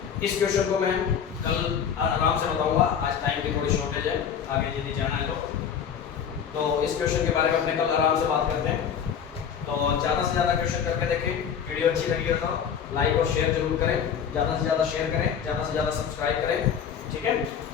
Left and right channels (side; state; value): right; quieter; 7.9 dB